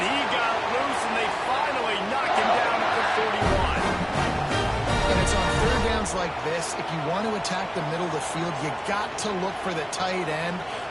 he got loose, and they finally knock him down at the 41. And it's on third downs like this. If you want to attack the middle of the field, you got to look for the tight end.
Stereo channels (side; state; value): both; identical; correlation 1.00